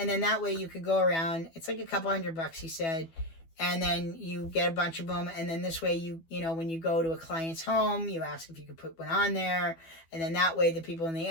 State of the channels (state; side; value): late; right; 12 ms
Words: then that way you could go around. It's like a couple $100, he said, and then you get a bunch of them, and then this way you know when you go to a client's home, you ask if you could put one on there, and then that way the people in the